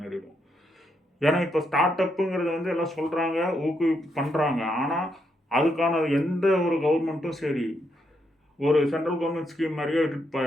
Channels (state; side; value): normal; both; correlation 0.79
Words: நேரிடும். ஏன்னா இப்போ ஸ்டார்ட் அப்புங்கிறது வந்து எல்லாம் சொல்கிறாங்க, பண்ணுறாங்க. ஆனால் அதுக்கான எந்த ஒரு கவர்மெண்ட்டும் சரி ஒரு சென்ட்ரல் கவர்மெண்ட் ஸ்கீம் மாதிரியே விட்டுட்டு